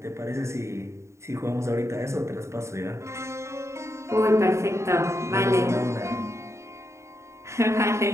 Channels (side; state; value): left; late; 0.14 ms